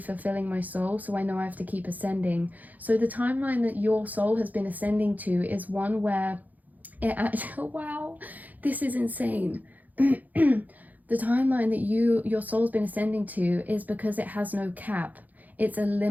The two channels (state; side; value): late; left; 0.081 ms